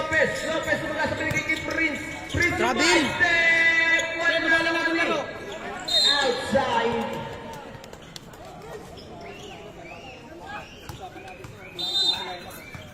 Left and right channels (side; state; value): both; identical; correlation 1.00